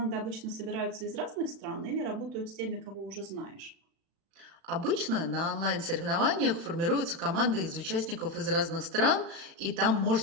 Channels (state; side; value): late; left; 36 ms